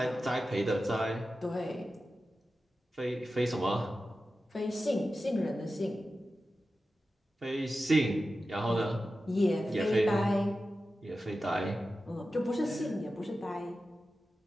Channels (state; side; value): normal; both; correlation 0.93